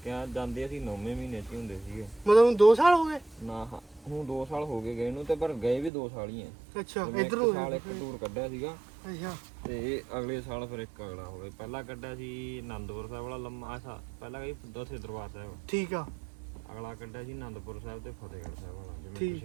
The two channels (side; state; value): left; drops out; at 5.9 s